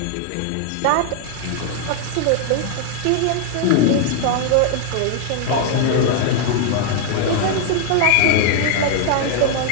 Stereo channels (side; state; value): both; different; correlation 0.00